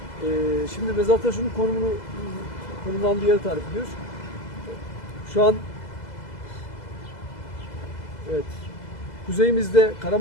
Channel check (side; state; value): right; late; 2.0 ms